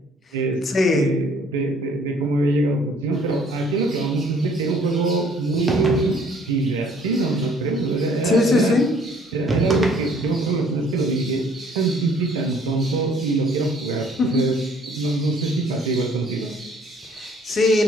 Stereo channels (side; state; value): both; normal; correlation 0.59